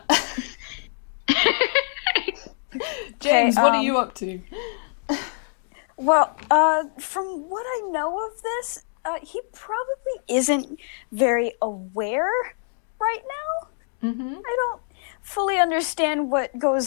James, what are you up to? Well, from what I know of this, he probably isn't very aware right now. Mm-hmm. I don't fully understand what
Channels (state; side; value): silent; right; 62 dB below the other